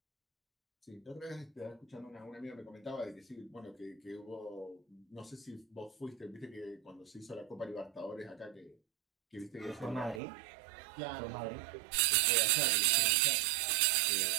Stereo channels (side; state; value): left; drops out; at 10.2 s